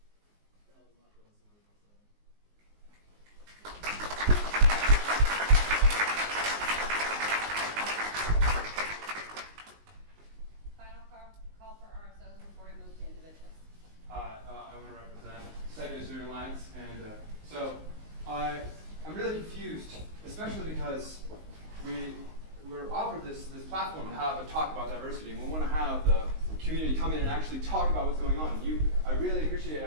that was my first word. Final call for RSOs before we move to individuals. I want to represent Second Student Alliance, and so I'm really confused, especially because we're offered this platform to have a talk about diversity, and we want to have the community come in and actually talk about what's going on. I really appreciate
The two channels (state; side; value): late; left; 19 ms